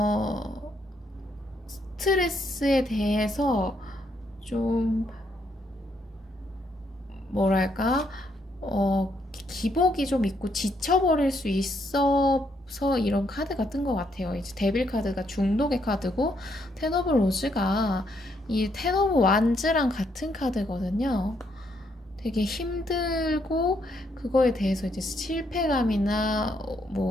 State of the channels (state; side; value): normal; both; correlation 0.74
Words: 스트레스에 대해서 좀 뭐랄까, 기복이 좀 있고 지쳐버릴 수 있어서 이런 카드가 뜬 것 같아요. 이제 데빌 카드가 중독의 카드고, 텐 오브 로즈가 이 텐 오브 완즈랑 같은 카드거든요. 되게 힘들고 그거에 대해서 이제 실패감이나